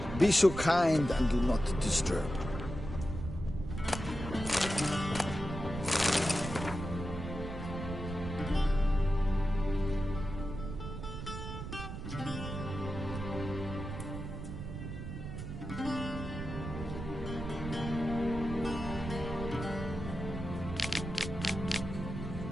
Be so kind and do not disturb.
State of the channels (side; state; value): right; noise; rumble, 7 dB below the sound